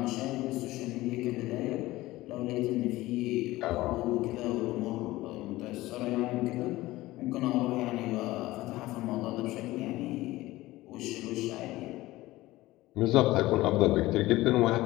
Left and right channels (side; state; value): right; quieter; 18.0 dB